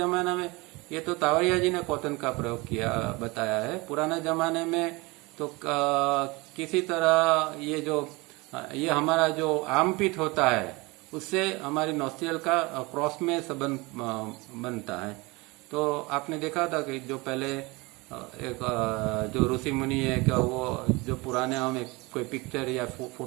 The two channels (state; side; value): quieter; left; 24.6 dB